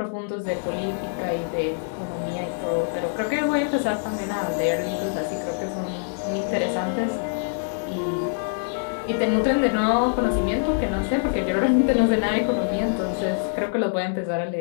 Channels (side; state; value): right; silent; 62 dB below the other